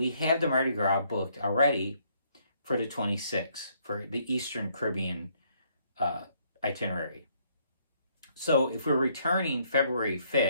have the Mardi Gras booked already for the 26th for the Eastern Caribbean itinerary. So if we're returning February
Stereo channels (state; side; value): inverted; both; correlation -0.69